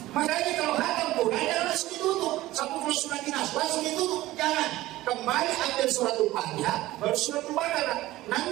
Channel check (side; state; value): left; quieter; 16.8 dB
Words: Makanya kalau hatam Quran jangan langsung ditutup. Sampai kalau surat dinas langsung ditutup. Jangan. Kembali ambil suratul Fatihah baru suratul Baqarah.